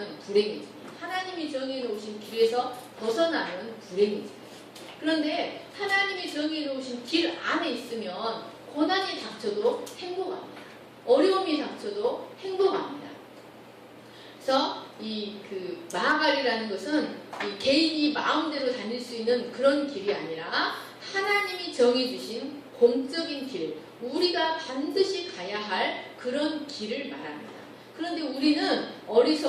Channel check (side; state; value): both; identical; correlation 1.00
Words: 불행해집니다. 하나님이 정해놓으신 길에서 벗어나면 불행해집니다. 그런데 하나님이 정해 놓으신 길 안에 있으면 고난이 닥쳐도 행복합니다. 어려움이 닥쳐도 행복합니다. 그래서 이 마하갈이라는 것은 이 개인이 마음대로 다닐 수 있는 그런 길이 아니라 하나님이 정해주신 공적인 길, 우리가 반드시 가야 할 그런 길을 말합니다. 그런데 우리는